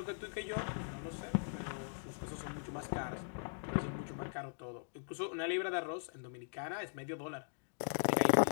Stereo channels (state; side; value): silent; right; digital silence